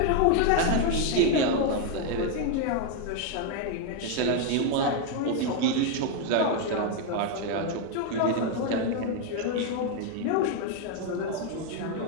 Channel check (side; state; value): both; different; correlation 0.01